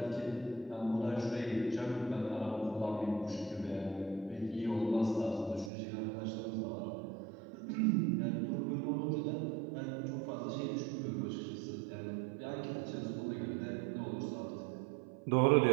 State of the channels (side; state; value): left; drops out; at 5.7 s